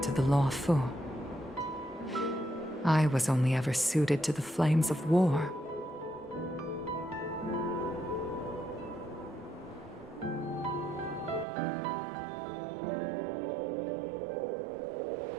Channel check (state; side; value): drops out; left; at 11.5 s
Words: to the Luofu. I was only ever suited to the flames of war.